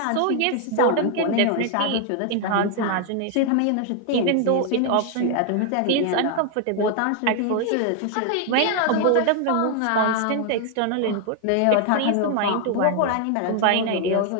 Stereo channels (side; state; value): both; different; correlation 0.00